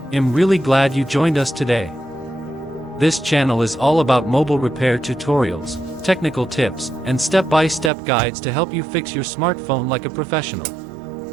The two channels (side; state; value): left; drops out; at 7.9 s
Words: I'm really glad you joined us today. This channel is all about mobile repair tutorials, technical tips, and step-by-step guides to help you fix your smartphone like a professional.